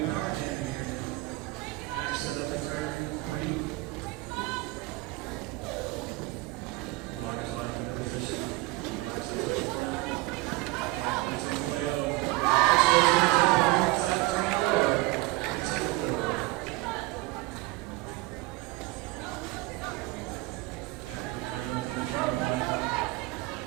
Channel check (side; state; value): left; quieter; 21.0 dB